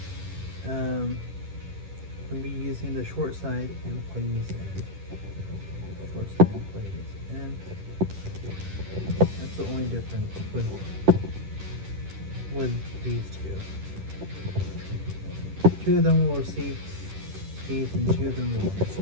using the short side and putting these in. Short side and putting these in. That's the only difference with these two. Two of them will receive these and two of them will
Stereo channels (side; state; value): left; late; 10 ms